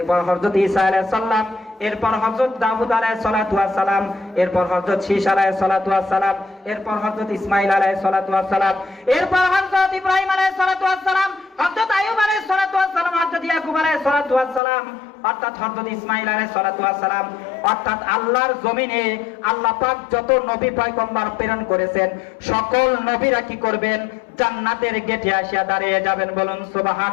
হযরত ঈসা আলাইহিস সালাম, এরপর হযরত দাউদ আলাইহিস সালাতু ওয়াস সালাম, এরপর হযরত শীশ আলাইহিস সালাতু ওয়াস সালাম, এরপর হযরত ইসমাঈল আলাইহিস সালাতু ওয়াস সালাম, এরপর হযরত ইব্রাহিম আলাইহিস সালাতু ওয়াস সালাম, হযরত আইয়ুব আলাইহিস সালাতু ওয়াস সালাম, হযরত ইয়াকুব আলাইহিস সালাতু ওয়াস সালাম, অর্থাৎ হযরত ইসমাঈল আলাইহিস সালাতু ওয়াস সালাম, অর্থাৎ আল্লাহর জমিনে আল্লাহ পাক যত নবী পয়গম্বর প্রেরণ করেছেন সকল নবীরা কি করবেন? জান্নাতের গেটে আসিয়া দাঁড়িয়ে যাবেন। বলুন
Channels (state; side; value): drops out; right; at 14.6 s